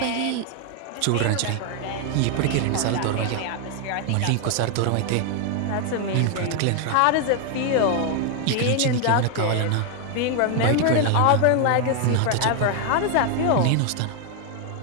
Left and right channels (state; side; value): different; both; correlation 0.01